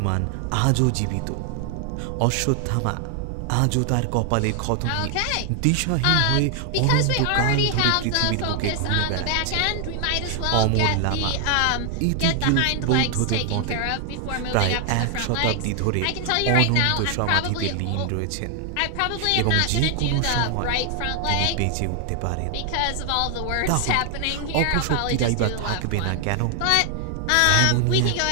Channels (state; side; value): different; both; correlation 0.00